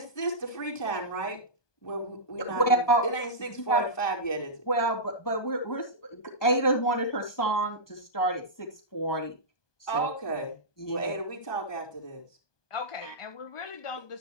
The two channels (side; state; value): right; late; 1.2 ms